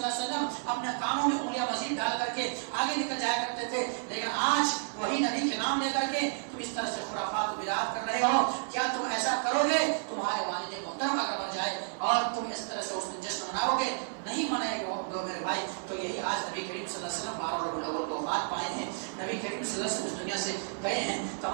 علیہ وسلم اپنے کانوں میں انگلیاں مزید ڈال کر کے آگے نکل جایا کرتے تھے. لیکن آج وہی نبی کے نام لے کر کے تم اس طرح سے خرافات و بدعات کر رہے ہو. کیا تم ایسا کرو گے؟ تمہارے والد محترم اگر مر جائے اور تم اس طرح سے اس دن جشن مناؤ گے، نہیں منائے گے میرے بھائی. تو یہی آج نبی کریم صلی اللہ علیہ وسلم 12 ربیع الاول کو وفات پائے ہیں. نبی کریم صلی اللہ علیہ وسلم اس دنیا سے گئے ہیں.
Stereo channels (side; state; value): left; silent; 57 dB below the other